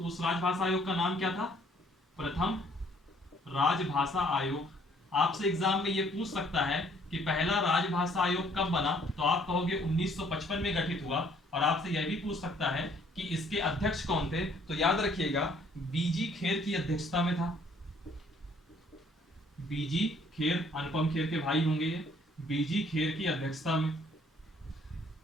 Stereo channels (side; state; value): both; normal; correlation 0.62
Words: उस राजभाषा आयोग का नाम क्या था, प्रथम राजभाषा आयोग। आपसे एग्जाम में ये पूछ सकता है कि पहला राजभाषा आयोग कब बना, तो आप कहोगे 1955 में गठित हुआ, और आपसे यह भी पूछ सकता है कि इसके अध्यक्ष कौन थे, तो याद रखिएगा बीजी खेर की अध्यक्षता में था। बीजी खेर, अनुपम खेर के भाई होंगे ये, बीजी खेर की अध्यक्षता में।